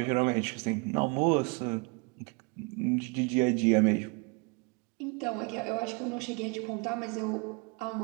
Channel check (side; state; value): left; quieter; 31.3 dB